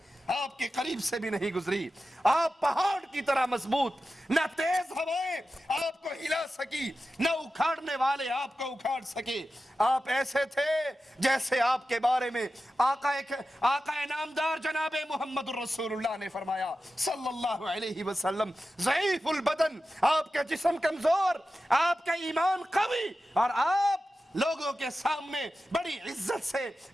آپ کے قریب سے بھی نہیں گزری. آپ پہاڑ کی طرح مضبوط, نہ تیز ہوائیں آپ کو ہلا سکی نہ اکھاڑنے والے آپ کو اکھاڑ سکے. آپ ایسے تھے جیسے آپ کے بارے میں آقا نامدار جناب محمد الرسول اللہ نے فرمایا صلی اللہ علیہ وسلم ضعیف البدن, آپ کا جسم کمزور, آپ کا ایمان قوی اور آپ لوگوں کے سامنے بڑی عزت سے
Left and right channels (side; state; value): both; normal; correlation 0.93